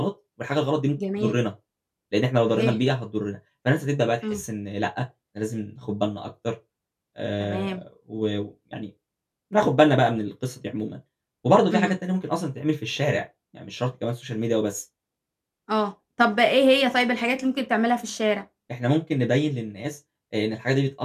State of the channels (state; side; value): identical; both; correlation 1.00